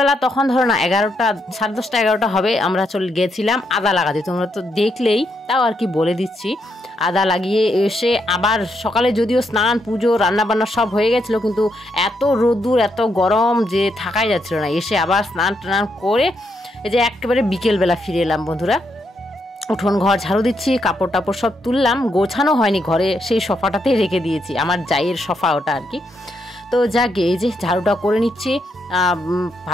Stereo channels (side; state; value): both; normal; correlation 0.79